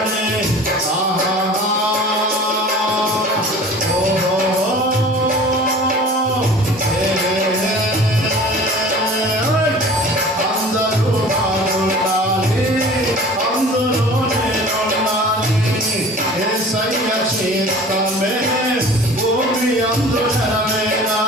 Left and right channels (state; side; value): normal; both; correlation 0.43